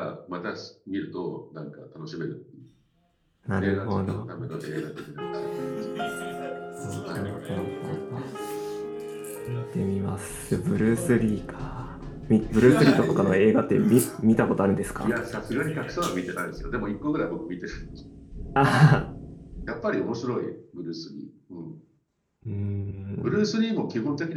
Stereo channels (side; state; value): both; identical; correlation 1.00